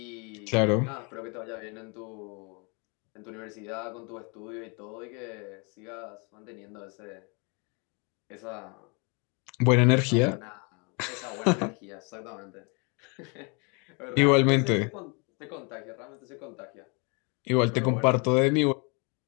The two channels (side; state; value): right; quieter; 32.8 dB